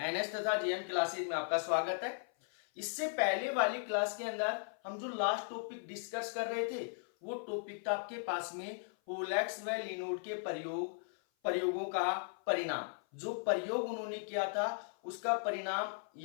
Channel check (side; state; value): right; silent; 53 dB below the other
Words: तथा जीएम क्लासेज में आपका स्वागत है। इससे पहले वाली क्लास के अंदर हम जो लास्ट टॉपिक डिस्कस कर रहे थे वो टॉपिक था आपके पास में होलेक्स व लिनोड के प्रयोगों का परिणाम। जो प्रयोग उन्होंने किया था उसका परिणाम